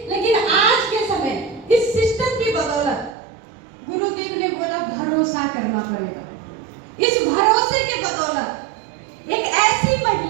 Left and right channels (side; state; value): left; drops out; at 3.2 s